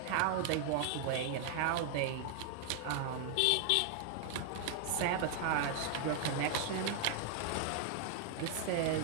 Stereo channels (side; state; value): both; different; correlation 0.00